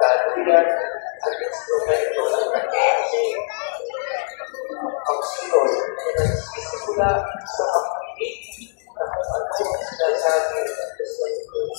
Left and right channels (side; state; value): right; silent; 64 dB below the other